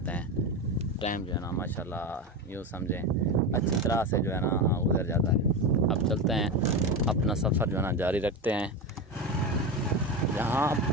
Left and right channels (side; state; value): both; normal; correlation 0.19